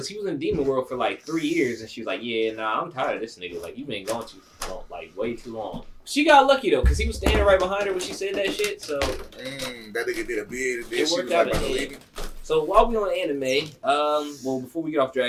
he was in Demon World for, like, 3 years, and she was like, yeah, nah, I'm tired of this nigga. Like, you been going too long, like, way too long. She got lucky, though, because he was standing right behind her when she said that shit, so... that nigga did a bid. And then It she worked was out like, in the "Bro, end." So, while we on anime, well, before we get off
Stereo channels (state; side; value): identical; both; correlation 1.00